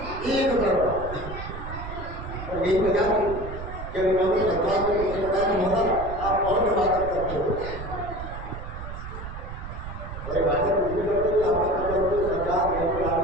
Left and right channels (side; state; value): right; noise; rumble, 9 dB below the sound